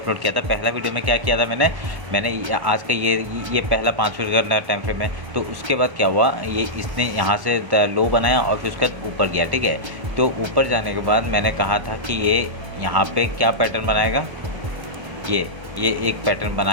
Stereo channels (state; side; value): late; left; 1.3 ms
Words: किया था। पहला वीडियो में क्या किया था मैंने आज का ये पहला 5 मिनट का टाइम फ्रेम है। तो उसके बाद क्या हुआ, ये इसने यहाँ से लो बनाया और फिर उसके बाद ऊपर गया, ठीक है। तो ऊपर जाने के बाद मैंने कहा था कि ये यहाँ पे क्या पैटर्न बनाएगा, ये एक पैटर्न